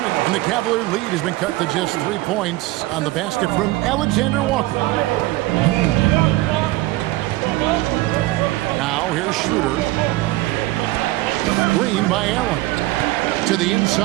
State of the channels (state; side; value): quieter; left; 18.6 dB